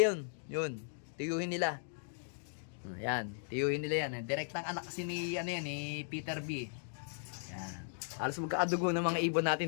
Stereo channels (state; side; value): silent; right; digital silence